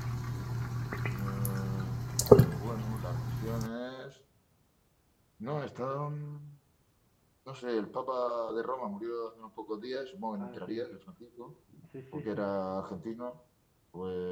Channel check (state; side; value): identical; both; correlation 1.00